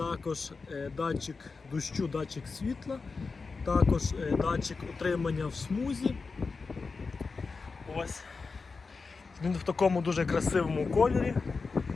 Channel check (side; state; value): right; quieter; 4.4 dB